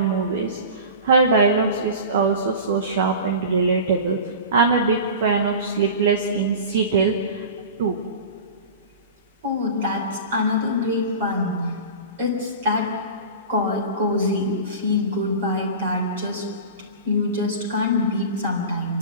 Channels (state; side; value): inverted; both; correlation -0.34